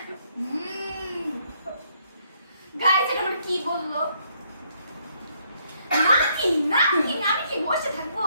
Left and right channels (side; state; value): both; inverted; correlation -0.71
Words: গাইস এটা মানে কি বললো? নাকি নাকি আমি কি বসে থাকবো?